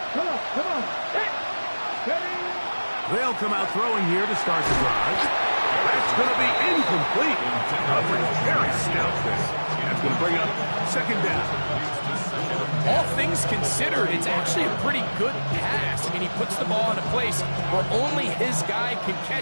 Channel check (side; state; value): both; inverted; correlation -1.00